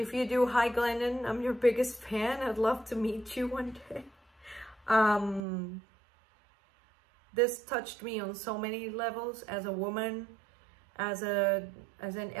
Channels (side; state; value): left; drops out; at 5.5 s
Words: you do, hi Glennon, I'm your biggest fan. I'd love to meet you one day. This touched me on so many levels as a woman, as an